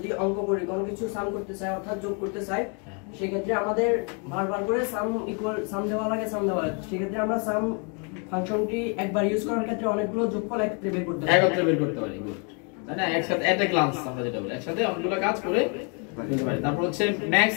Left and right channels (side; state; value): right; quieter; 36.5 dB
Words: অঙ্ক করি কোনো কিছু সাম করতে চাই অর্থাৎ যোগ করতে চাই সেই ক্ষেত্রে আমাদের বারবার করে সাম ইকুয়াল সাম দেওয়া লাগে সেই ক্ষেত্রে আমরা সাম ফাংশনটি একবার ইউজ করার ক্ষেত্রে অনেকগুলো যোগফল একত্রে বের করতে পারি গুড তাই না একসাথে এট এ গ্লান্স আমরা যেটা বলি একসাথে অনেকগুলো কাজ করে ফেলতে পারি তারপর হচ্ছে ম্যাক্স